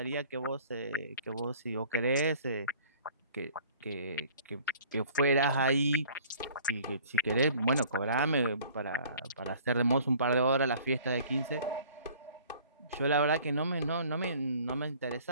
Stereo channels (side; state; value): both; inverted; correlation -0.51